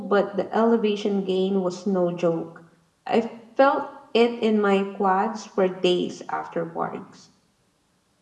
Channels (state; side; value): identical; both; correlation 1.00